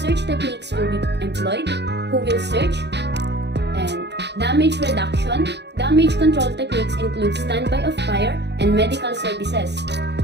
techniques will be employed? Who will search? And damage reduction. Damage control techniques include standby of fire and medical services.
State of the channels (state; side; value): late; left; 0.50 ms